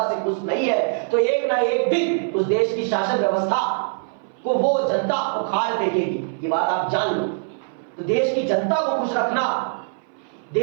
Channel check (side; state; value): left; silent; 59 dB below the other